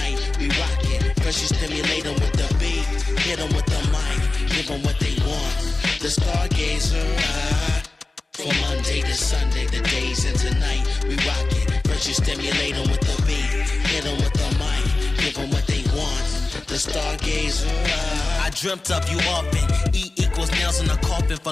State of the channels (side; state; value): right; quieter; 3.3 dB